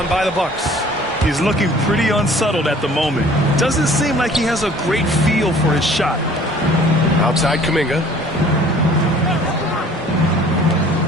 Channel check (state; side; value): normal; both; correlation 0.51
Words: by the Bucks. He's looking pretty unsettled at the moment. Doesn't seem like he has a great feel for his shot. Outside Kuminga.